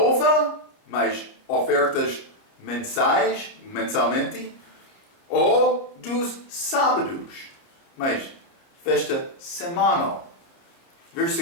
mas ofertas mensalmente, ou dos sábados, mas festa semanal.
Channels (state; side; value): late; right; 29 ms